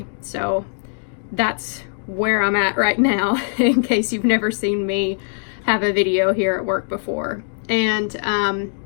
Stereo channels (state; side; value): silent; right; digital silence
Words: So that's where I'm at right now, in case you've never seen me have a video here at work before. And